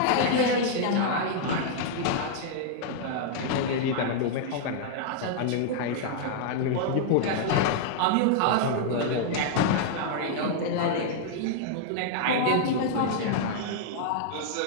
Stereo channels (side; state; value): both; different; correlation -0.01